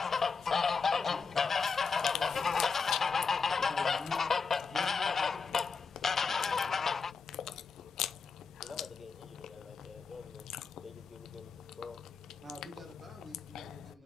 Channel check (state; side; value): quieter; right; 5.2 dB